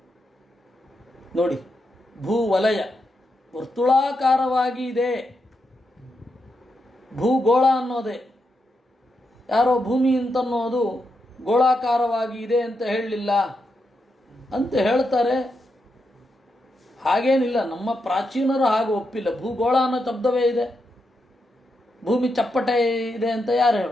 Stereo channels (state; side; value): normal; both; correlation 0.84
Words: ನೋಡಿ, ಭೂವಲಯ ವರ್ತುಳಾಕಾರವಾಗಿ ಇದೆ. ಭೂಗೋಳ ಅನ್ನೋದೇ, ಯಾರೋ ಭೂಮಿ ಅಂತನ್ನೋದು ಗೋಳಾಕಾರವಾಗಿ ಇದೆ ಅಂತ ಹೇಳಲಿಲ್ಲ ಅಂತ ಹೇಳ್ತಾರೆ. ಹಾಗೇನಿಲ್ಲ, ನಮ್ಮ ಪ್ರಾಚೀನರು ಹಾಗೆ ಒಪ್ಪಿಲ್ಲ. ಭೂಗೋಳ ಅನ್ನೋ ಶಬ್ದವೇ ಇದೆ, ಭೂಮಿ ಚಪ್ಪಟೆ ಇದೆ ಅಂತ ಯಾರು